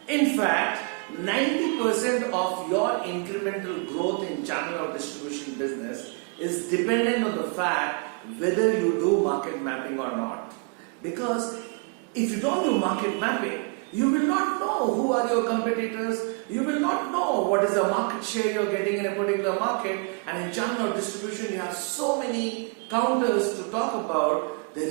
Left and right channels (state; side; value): quieter; left; 33.2 dB